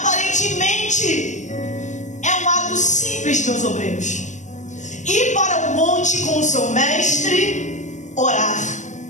é um ato simples, meus obreiros, ir para o monte com o seu mestre, orar.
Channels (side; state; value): right; late; 0.35 ms